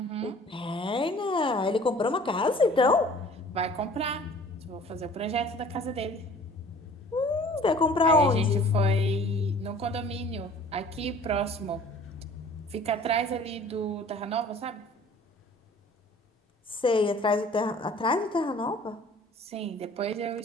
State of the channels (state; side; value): normal; both; correlation 0.49